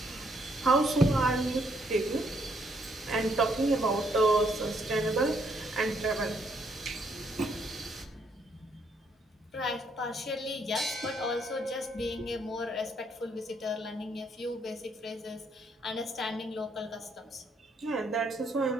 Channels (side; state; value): both; normal; correlation 0.71